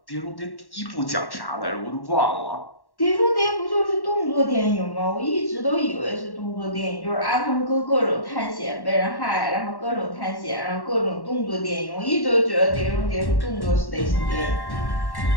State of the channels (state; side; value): late; right; 1.1 ms